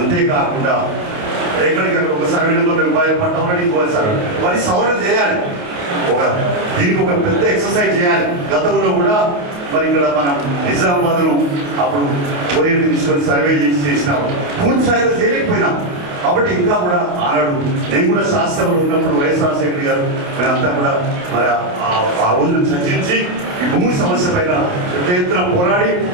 ఎక్కడికక్కడ ఒక సర్వే నెంబర్ రూపాయలు పట్టమని ఇంకో సర్వే మరి సవరణ చేయాలి. దీనికి ఒక పెద్ద ఎక్సర్సైజ్ చేయాలి. గతంలో కూడా మరి ఇక్కడ మనం నిజామాబాద్ను అప్పుడు కోరియర్ తీసుకొని సర్వే చేసినాము, పూర్తి స్థాయిలో చేయలేకపోయినాం. కాబట్టి ఇంకా కూడా ఆనాడు నేను కూడా శాస్త్రంలో ఉన్నప్పుడు వైఎస్ రాజశేఖర్ గారు మేమంతా కూడా మరి ఆ రోజును చర్చించి ఈ భూమి సమస్య పైన పెద్ద ఎత్తున పోరాడి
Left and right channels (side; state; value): left; late; 28 ms